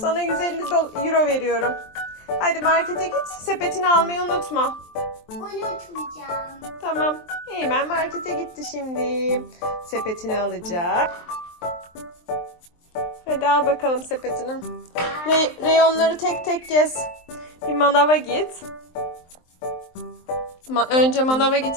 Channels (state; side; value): late; right; 23 ms